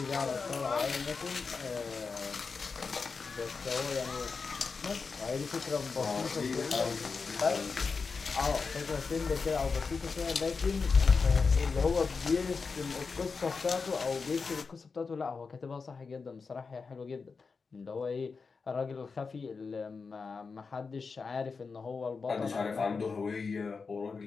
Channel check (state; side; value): quieter; right; 4.8 dB